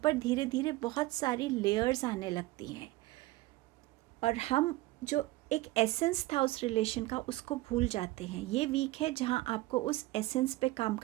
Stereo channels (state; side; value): quieter; left; 18.9 dB